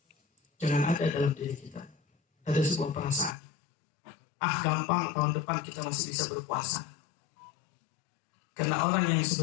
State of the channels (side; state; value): right; drops out; at 3.4 s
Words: jangan ada dalam diri kita ada sebuah perasaan, gampang tahun depan kita masih bisa berpuasa. Karena orang yang